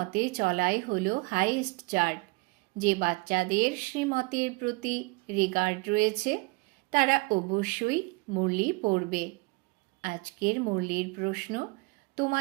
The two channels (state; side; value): quieter; left; 26.0 dB